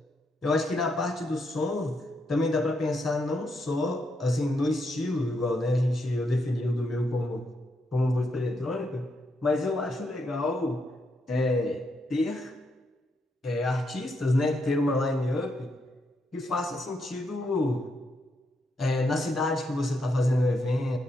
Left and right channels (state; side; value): normal; both; correlation 0.79